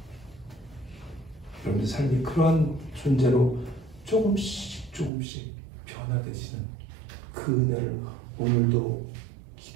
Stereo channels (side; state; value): left; drops out; at 5.1 s